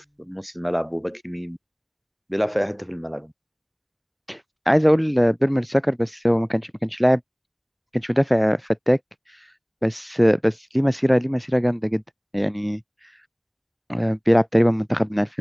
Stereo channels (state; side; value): identical; both; correlation 1.00